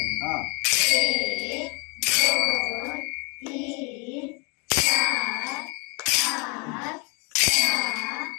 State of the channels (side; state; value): right; quieter; 31.8 dB